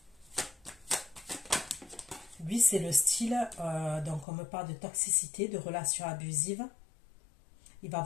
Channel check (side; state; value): right; drops out; at 4.2 s